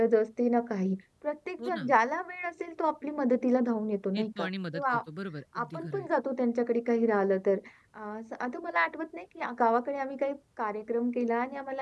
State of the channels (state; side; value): identical; both; correlation 1.00